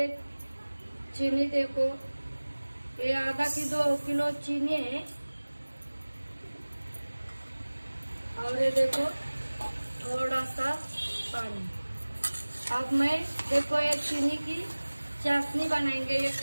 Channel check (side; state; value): both; inverted; correlation -1.00